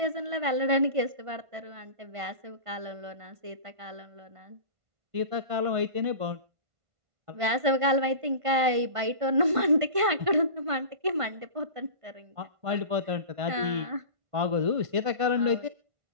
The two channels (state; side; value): late; left; 1.5 ms